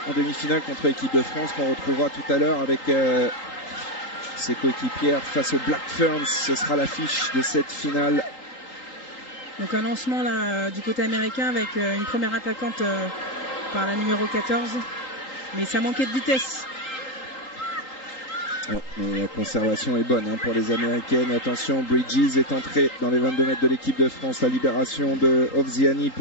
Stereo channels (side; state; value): right; late; 3.8 ms